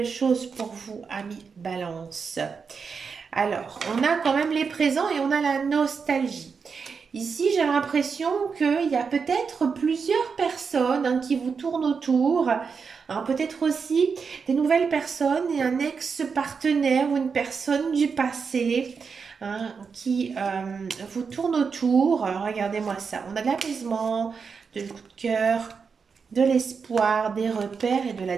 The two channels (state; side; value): quieter; left; 5.6 dB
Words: choses pour vous, ami Balance. Alors, on a quand même les présents et on a la nostalgie. Ici, j'ai l'impression qu'il y a peut-être plusieurs personnes, hein, qui vous tournent autour. Peut-être aussi des nouvelles personnes et un ex-partenaire ou une personne du passé, hein, qui vous tourne autour. Regardez-moi ça. On a de l'apaisement, de coup de cœur, de l'espoir, des repères et de la